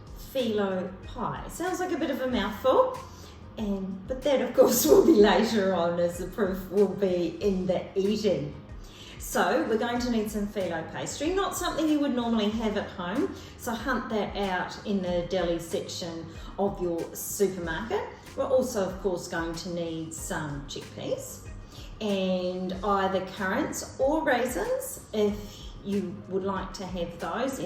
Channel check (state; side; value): identical; both; correlation 1.00